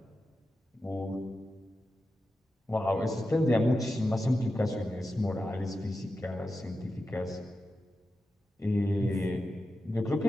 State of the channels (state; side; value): normal; both; correlation 0.90